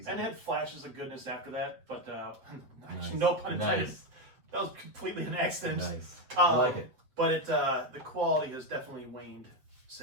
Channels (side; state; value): left; late; 7.8 ms